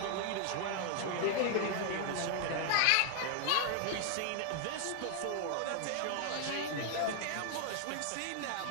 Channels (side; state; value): both; different; correlation 0.00